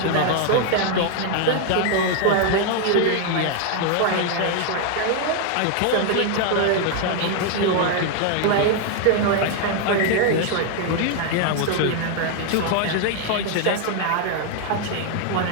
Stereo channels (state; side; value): different; both; correlation 0.00